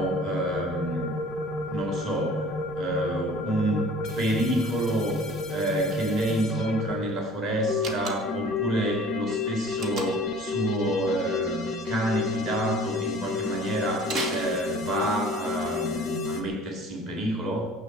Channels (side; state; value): both; normal; correlation 0.48